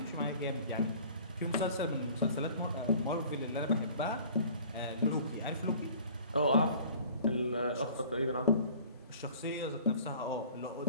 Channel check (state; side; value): inverted; both; correlation -0.48